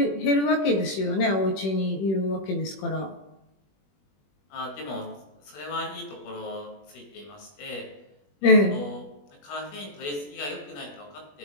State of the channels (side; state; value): right; late; 21 ms